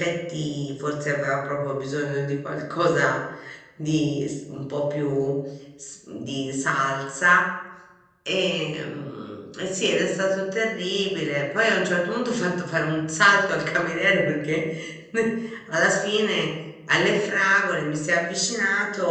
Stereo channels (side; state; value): both; identical; correlation 1.00